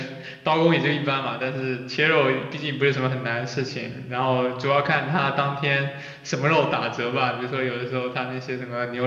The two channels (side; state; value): both; identical; correlation 1.00